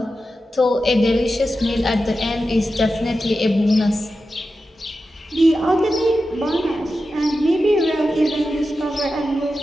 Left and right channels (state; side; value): normal; both; correlation 0.91